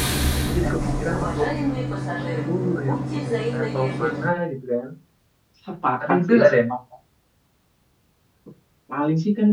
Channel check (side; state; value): both; identical; correlation 1.00